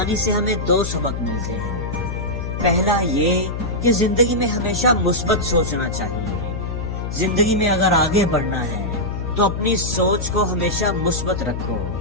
سے ہمیں دو سبق ملتے ہیں۔ پہلا یہ کہ زندگی میں ہمیشہ مثبت سوچنا چاہیے۔ زندگی میں اگر آگے بڑھنا ہے تو اپنی سوچ کو ہمیشہ مثبت رکھو۔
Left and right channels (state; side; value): noise; left; hum, 4 dB below the sound